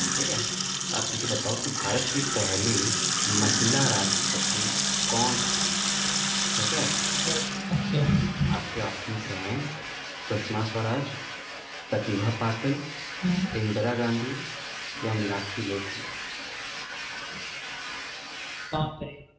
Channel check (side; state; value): both; identical; correlation 1.00